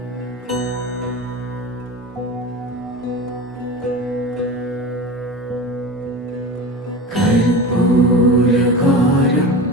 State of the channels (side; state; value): both; normal; correlation 0.30